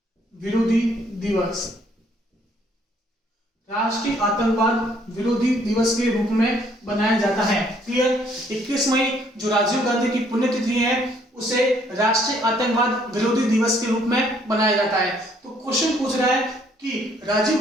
विरोधी दिवस, राष्ट्रीय आतंकवाद विरोधी दिवस के रूप में बनाया जाता है। क्लियर? 21 मई जो राजीव गांधी की पुण्यतिथि है उसे राष्ट्रीय आतंकवाद विरोधी दिवस के रूप में बनाया जाता है। तो क्वेश्चन पूछ रहा है कि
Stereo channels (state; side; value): normal; both; correlation 0.65